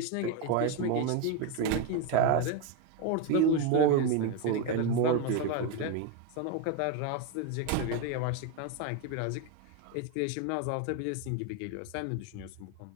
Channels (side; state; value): both; different; correlation 0.02